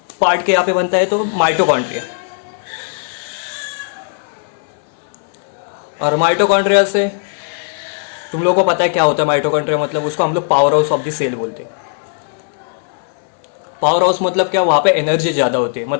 पार्ट के यहाँ पे बनता है? तो माइटोकॉन्ड्रिया। और माइटोकॉन्ड्रिया से तुम लोगों को पता है क्या होता है माइटोकॉन्ड्रिया? मतलब उसको हम लोग powerhouse of the cell बोलते हैं। पावर हाउस मतलब क्या, वहां पे एनर्जी ज्यादा होती है,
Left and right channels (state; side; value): silent; right; 68 dB below the other